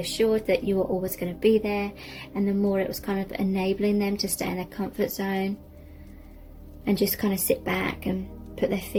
that you were always going to be there, and the more it was kind of enabling them to stay in their comfort zone and just kind of sit back and put their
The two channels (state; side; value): identical; both; correlation 1.00